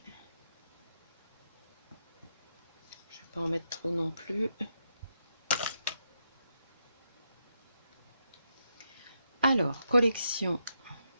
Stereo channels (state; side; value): inverted; both; correlation -0.82